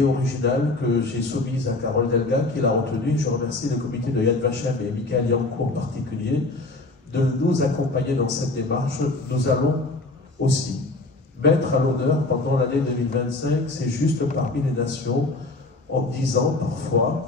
originale que j'ai soumise à Carole Delga, qui l'a retenue. Je remercie le comité de Yad Vashem et Michael Yancourt en particulier de nous accompagner dans cette démarche. Nous allons aussi mettre à l'honneur pendant l'année 2025 ces justes parmi les nations, en disant parfois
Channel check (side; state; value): right; quieter; 3.1 dB